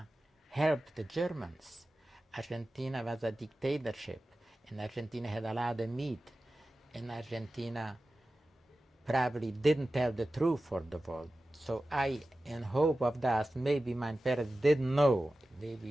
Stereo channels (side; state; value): both; normal; correlation 0.95